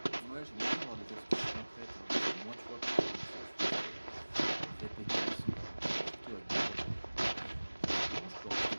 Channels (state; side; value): inverted; both; correlation -1.00